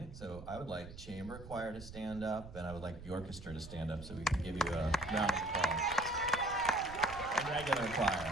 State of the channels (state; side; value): noise; right; rumble, 14 dB below the sound